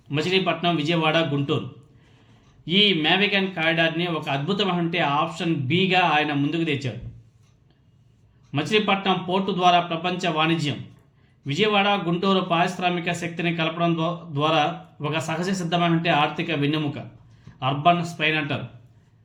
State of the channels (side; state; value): both; identical; correlation 1.00